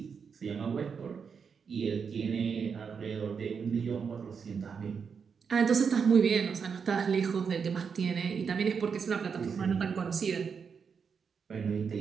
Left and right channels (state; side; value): quieter; left; 6.2 dB